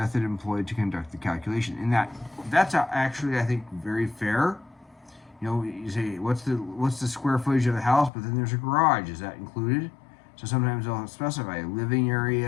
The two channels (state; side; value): drops out; right; at 8.1 s